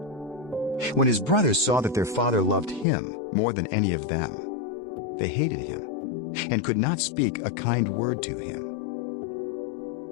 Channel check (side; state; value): right; drops out; at 2.9 s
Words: When his brothers saw that their father loved him more than any of them, They hated him and could not speak a kind word to him.